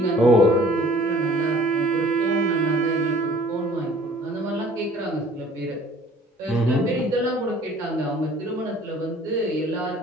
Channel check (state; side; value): normal; both; correlation 0.52